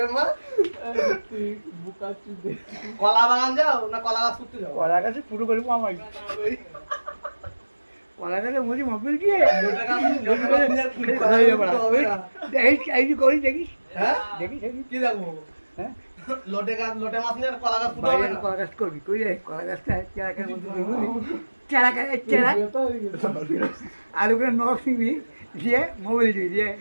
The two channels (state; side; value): inverted; both; correlation -1.00